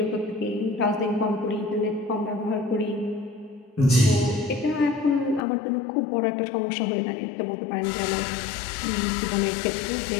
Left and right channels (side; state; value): right; drops out; at 5.4 s